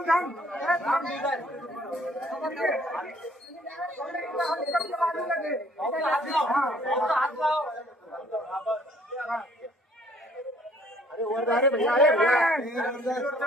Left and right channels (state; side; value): normal; both; correlation 0.59